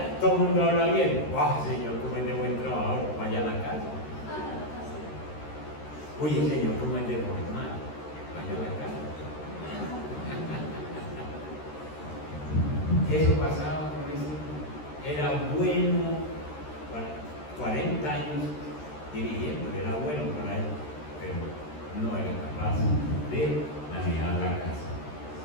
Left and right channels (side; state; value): right; late; 13 ms